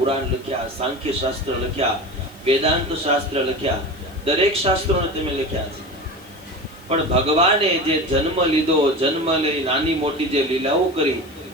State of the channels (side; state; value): left; noise; hiss, 26 dB below the sound